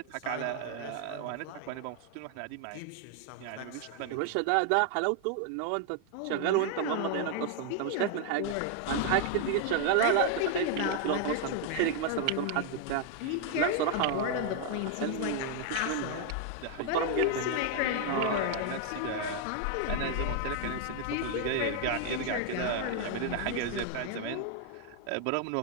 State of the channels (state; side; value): different; both; correlation 0.00